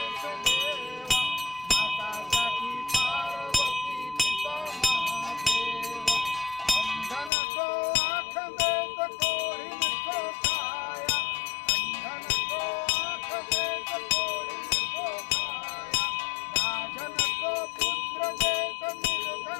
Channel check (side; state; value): right; drops out; at 7.3 s